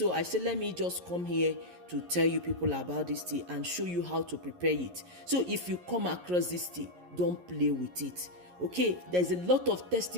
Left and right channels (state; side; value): late; left; 11 ms